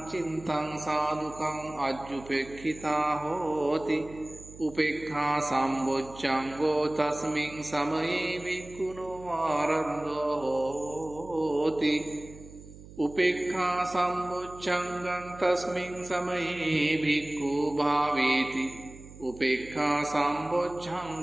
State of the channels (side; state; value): right; noise; hum, 18 dB below the sound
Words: චිත්තං සාදුකං අජ්ජුපෙක්ඛිතා හෝති උපේක්ඛා සම්බොජ්ජංගෝ තස්මින් සමයේ භික්ඛුනෝ ආරද්ධෝ හෝති උපේක්ඛා සම්බොජ්ජංගං තස්මින් සමයේ භික්ඛු භාවේති උපේක්ඛා